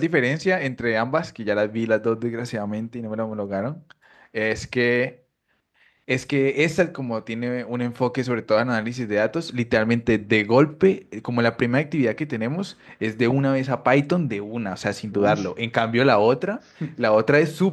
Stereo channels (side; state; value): both; identical; correlation 1.00